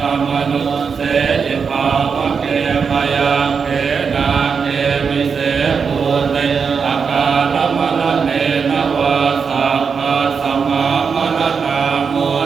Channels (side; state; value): left; quieter; 5.9 dB